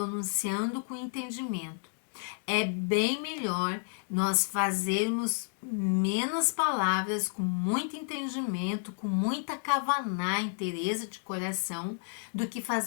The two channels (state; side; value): silent; right; 57 dB below the other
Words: com entendimento. É bem melhor nós fazermos menos palavras, com muito entendimento, com muita kavaná, inteireza de coração, do que